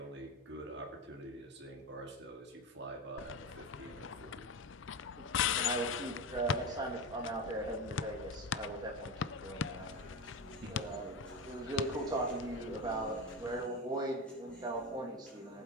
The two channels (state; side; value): normal; both; correlation 0.21